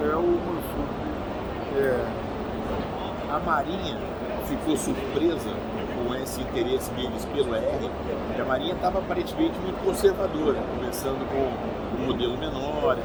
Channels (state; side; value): identical; both; correlation 1.00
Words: é o Mansup. A Marinha ficou surpresa com esse interesse deles pelo ER, e a Marinha estava aparentemente muito conservadora, começando com um modelo menor e